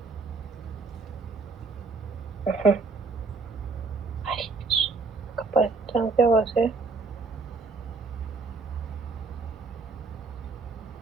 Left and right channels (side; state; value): left; quieter; 4.3 dB